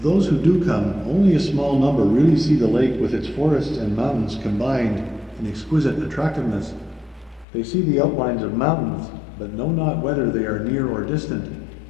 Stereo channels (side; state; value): right; drops out; at 7.5 s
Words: those who do come, only a small number really see the lake with its forests and mountains combined in exquisite attractiveness. They see the outlines of mountains, but know not whether they are near or distant,